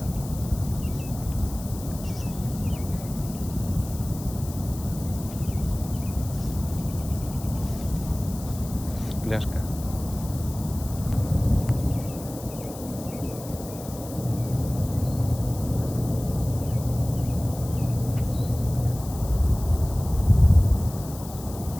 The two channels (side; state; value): left; noise; hiss, 15 dB below the sound